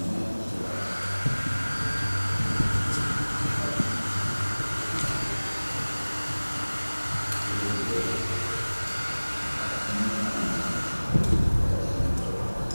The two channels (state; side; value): inverted; both; correlation -1.00